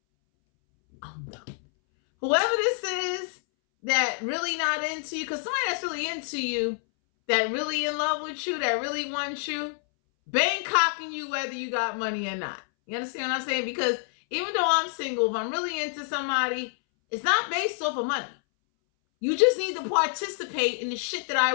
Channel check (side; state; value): right; silent; 60 dB below the other